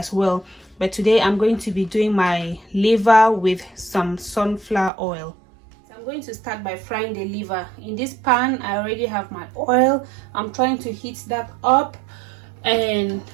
well. But today I'm going to be doing my liver with some sunflower oil. So I'm going to start by frying the liver. In this pan, I already have my oil. I'm trying to heat that up, and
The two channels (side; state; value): left; drops out; at 4.9 s